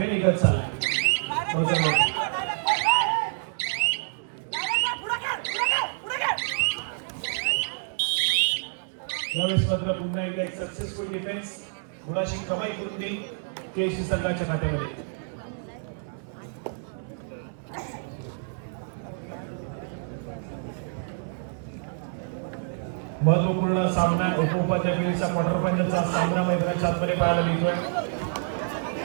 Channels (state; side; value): silent; left; digital silence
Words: निघत चाललं यावेळेस मात्र पुन्हा एक सक्सेसफुल डिफेन्स गुणाची कमाई करून देईल केसी संघाच्या खात्यामध्ये. महत्वपूर्ण सामना उपउपाध्याय क्वार्टर फायनलचा सामना मैदानाच्या आतमध्ये पाहायला मिळतोय.